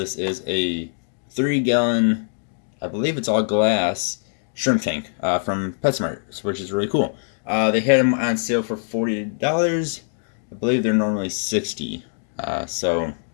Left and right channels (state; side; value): silent; right; digital silence